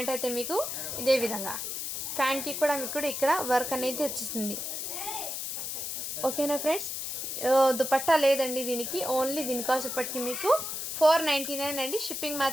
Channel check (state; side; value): noise; left; hiss, 4 dB below the sound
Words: అయితే మీకు ఇదే విధంగా, ప్యాంట్కి కూడా మీకు ఇక్కడ వర్క్ అనేది వచ్చేస్తుంది. ఓకేనా ఫ్రెండ్స్, దుపట్టా లేదండి దీనికి. ఓన్లీ దీని కాస్ట్ ఇప్పటికి మీకు 499 అండి. షిప్పింగ్